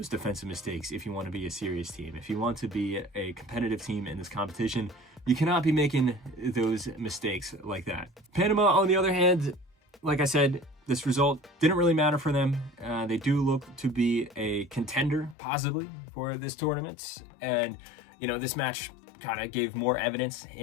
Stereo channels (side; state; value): right; drops out; at 15.4 s